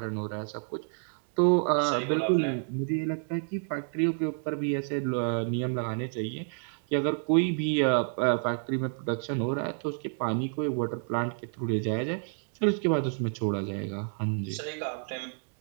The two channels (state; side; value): silent; left; 58 dB below the other